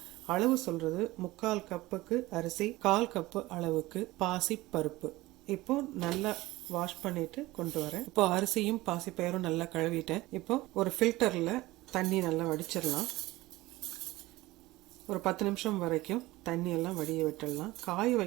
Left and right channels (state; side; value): quieter; left; 19.0 dB